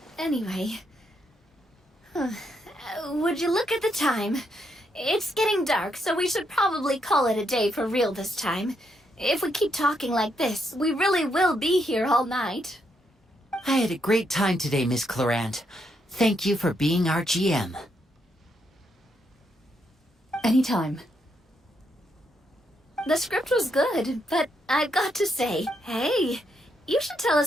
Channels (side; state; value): both; normal; correlation 0.78